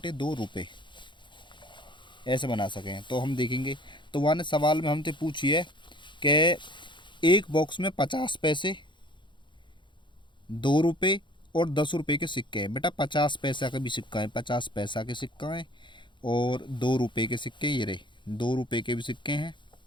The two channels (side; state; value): right; late; 0.23 ms